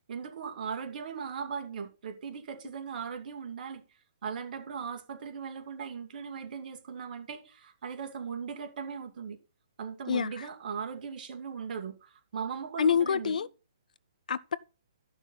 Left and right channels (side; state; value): both; inverted; correlation -0.64